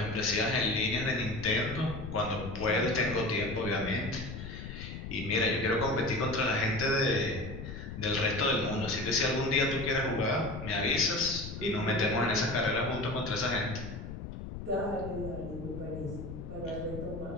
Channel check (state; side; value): noise; left; rumble, 9 dB below the sound